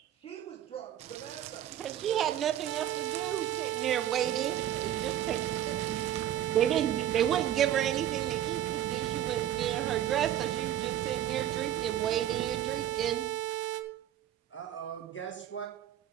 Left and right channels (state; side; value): quieter; left; 11.7 dB